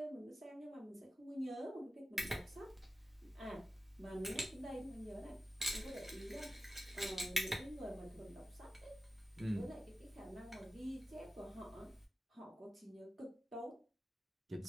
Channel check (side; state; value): both; normal; correlation 0.92